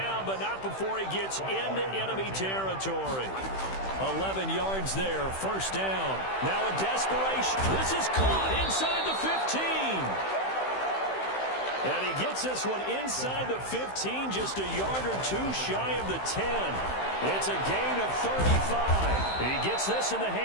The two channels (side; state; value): right; late; 15 ms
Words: but not before he gets into enemy territory. 11 yards there, first down. Now a desperation. This is caught inside the 15. And he gets this one inside the 15, just a yard or two shy of the 10. It's a gain of 35. He gets this in the